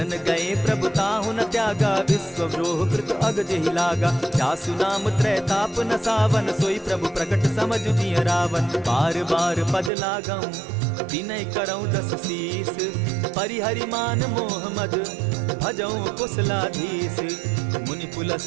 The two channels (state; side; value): drops out; left; at 9.9 s